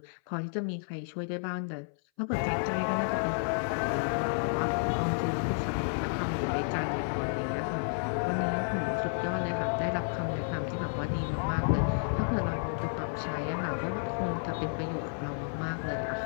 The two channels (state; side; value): silent; right; 57 dB below the other